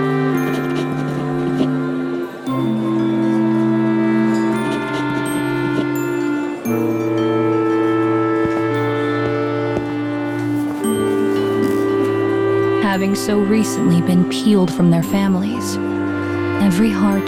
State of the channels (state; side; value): identical; both; correlation 1.00